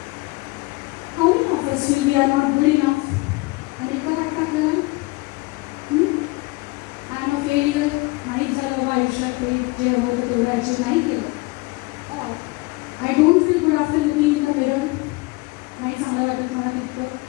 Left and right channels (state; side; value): quieter; right; 24.1 dB